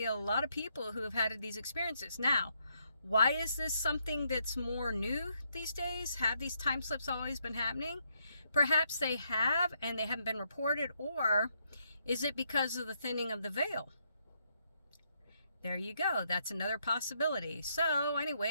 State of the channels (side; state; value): both; inverted; correlation -0.76